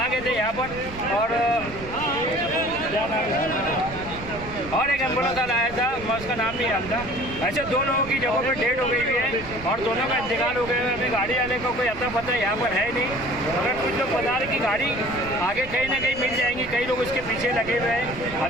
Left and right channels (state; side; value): noise; right; rumble, 14 dB below the sound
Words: गए थे यहाँ पर और एक एम्बुलेंस आया था, मैं उसका नाम नहीं जानता। ऐसे 2 लोगों की जगहों पर डेड हो गई हुई है और दोनों का इंतकाल हो गया है। अभी गाड़ी वाले का कोई अता पता यहाँ पर है नहीं, मगर कुछ लोग बता रहे कि गाड़ी आगे कहीं ना कहीं मिल जाएंगी, कई लोग इसके पीछे लगे हुए हैं।